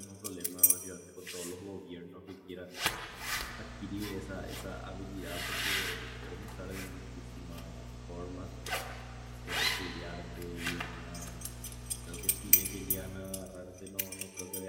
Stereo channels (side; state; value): both; identical; correlation 1.00